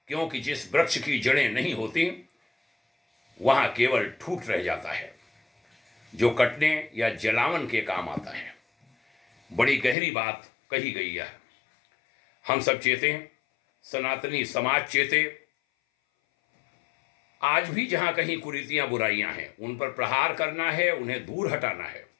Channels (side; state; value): right; drops out; at 10.0 s